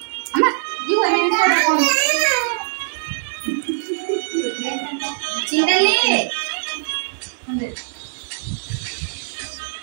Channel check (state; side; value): silent; left; digital silence